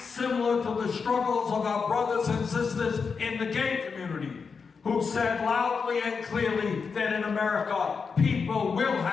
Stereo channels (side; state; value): right; quieter; 5.4 dB